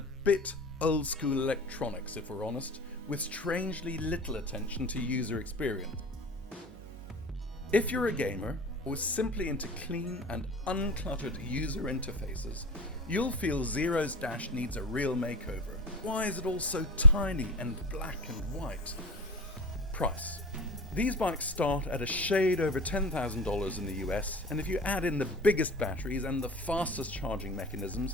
old-school electronics, if we're honest, with strangely little attention to user experience. If you're a gamer, or simply into clean and uncluttered user interfaces, you'll feel Zero's dash needs a real makeover. Why is it all so tiny and black and white? Price. These bikes start at a shade over $10,000 in the US, and if you add in the biggest batteries and the fastest charging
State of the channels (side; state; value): both; normal; correlation 0.28